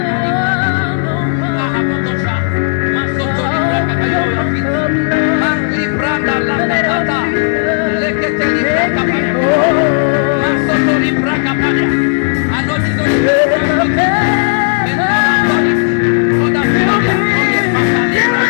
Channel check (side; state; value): right; silent; digital silence